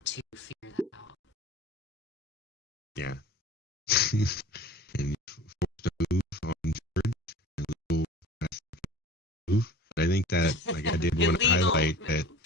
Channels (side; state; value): both; normal; correlation 0.41